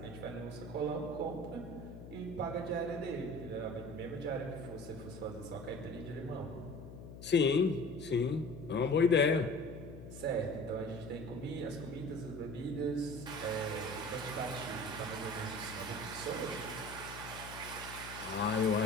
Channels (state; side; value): noise; left; hum, 12 dB below the sound